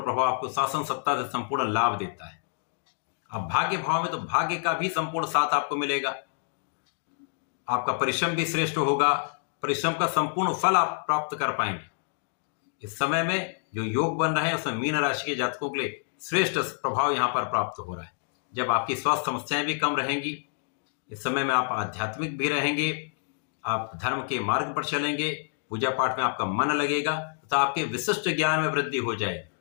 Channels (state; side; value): silent; right; digital silence